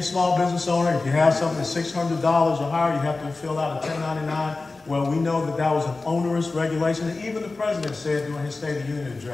business owner, if you have something that's $600 or higher, you have to fill out a 1099. Well, we know that that was an onerous regulation, and even the president said during his State of the Union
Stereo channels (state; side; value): quieter; right; 3.6 dB